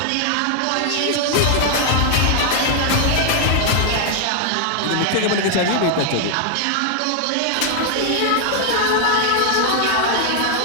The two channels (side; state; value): both; different; correlation 0.00